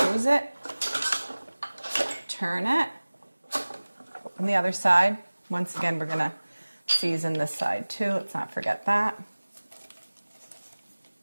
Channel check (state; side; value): inverted; both; correlation -1.00